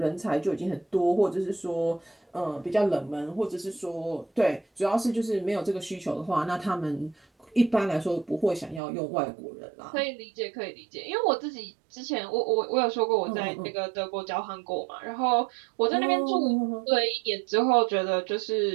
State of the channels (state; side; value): drops out; left; at 8.8 s